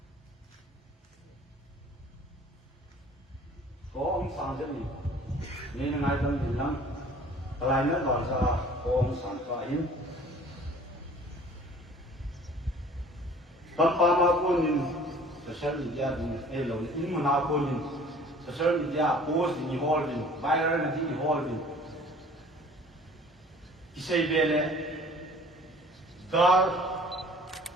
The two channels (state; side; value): normal; both; correlation 0.50